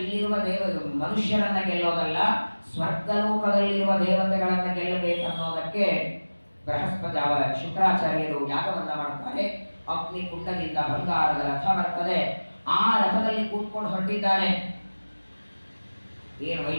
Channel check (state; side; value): inverted; both; correlation -1.00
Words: ಇಲ್ಲಿರುವ ಮನುಷ್ಯರನ್ನ ಗೆಲ್ಲೋದಲ್ಲ, ಸ್ವರ್ಗಲೋಕದಲ್ಲಿರುವ ದೇವತೆಗಳನ್ನ ಗೆಲ್ಲಬೇಕನ್ನೋದಕ್ಕೆ ಬೃಹಸ್ಪತಿ ಶುಕ್ರಾಚಾರ್ಯರು ಯಾಗವನ್ನ ಮಾಡುತ್ತಾರೆ. ಅಗ್ನಿ ಕುಂಡದಿಂದ ಬಂಗಾರದ ರಥ ಬರ್ತದೆ. ಆ ರಥದಲ್ಲಿ ಕೂತ್ಕೊಂಡು ಹೊರಟಿದ್ದಾನೆ. ಏನು